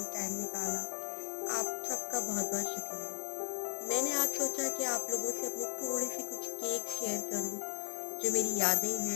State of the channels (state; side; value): silent; right; 54 dB below the other